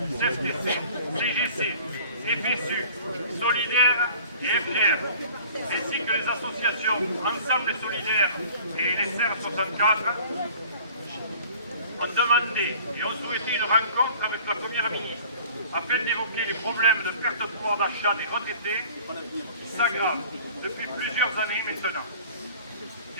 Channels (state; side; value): inverted; both; correlation -0.48